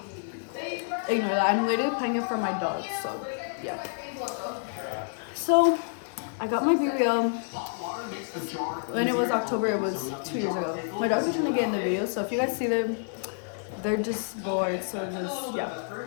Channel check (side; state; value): right; silent; digital silence